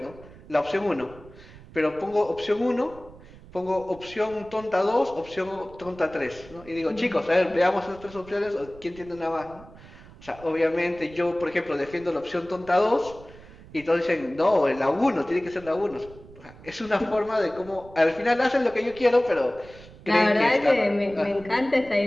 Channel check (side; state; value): right; noise; rumble, 20 dB below the sound